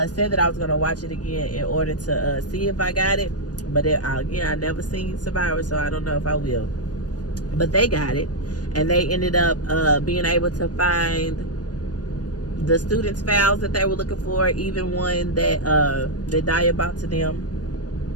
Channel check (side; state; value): right; late; 0.68 ms